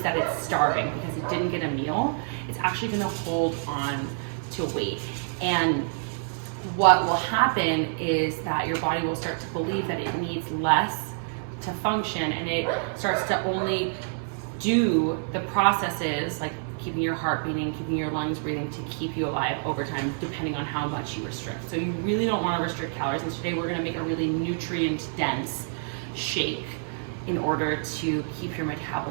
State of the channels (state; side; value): silent; left; 60 dB below the other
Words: that it's starving because it didn't get a meal, it's actually going to hold on to weight. And what will happen is that your body will start to believe that it needs less to function, and it starts to only do the processes like keeping your heart beating, keeping your lungs breathing to keep you alive over time, depending on how much you restrict. So you really don't want to restrict calories. And today we're going to make a really nutrient dense shake in order to keep your